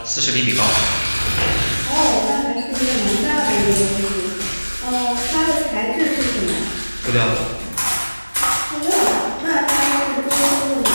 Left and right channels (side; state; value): both; inverted; correlation -1.00